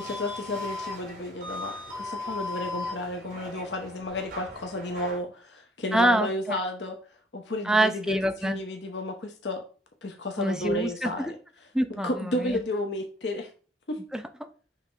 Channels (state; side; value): normal; both; correlation 0.60